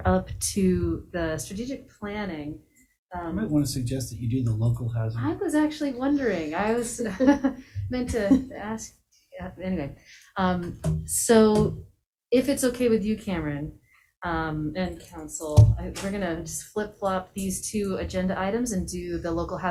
up to the strategic planning. I might want to suggest that you do the local housing. I was actually wondering, I was meant to ask, anyway. So if it's okay with you, Cameron, and council, we're gonna just flip-flop these two agenda items and do the local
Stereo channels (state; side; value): identical; both; correlation 1.00